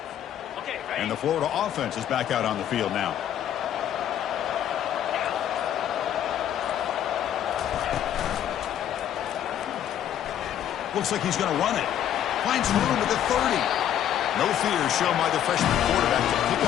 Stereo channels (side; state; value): right; quieter; 10.5 dB